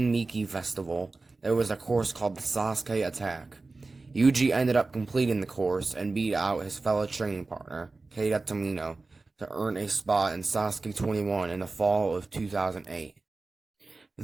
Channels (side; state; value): left; quieter; 3.6 dB